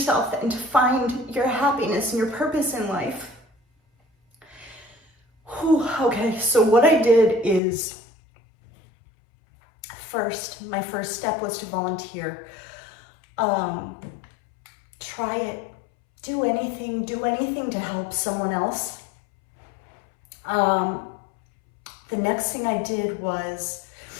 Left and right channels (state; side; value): drops out; right; at 7.6 s